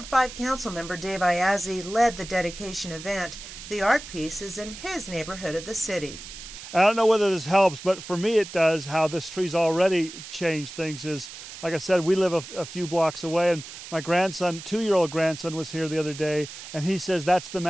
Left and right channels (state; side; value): noise; right; hiss, 13 dB below the sound